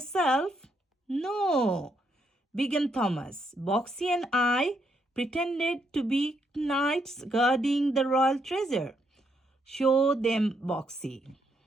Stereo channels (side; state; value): both; normal; correlation 0.76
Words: No, began Thomas. Boxy and I pretended to be knights guarding the royal treasure. Show them, Boxy.